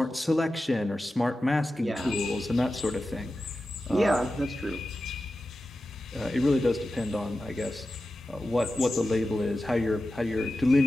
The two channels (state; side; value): normal; both; correlation 0.93